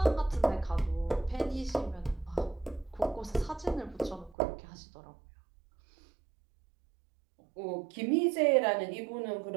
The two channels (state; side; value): drops out; left; at 4.4 s